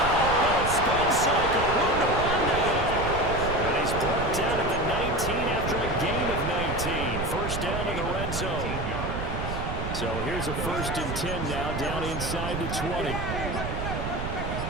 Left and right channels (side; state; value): right; noise; rumble, 4 dB below the sound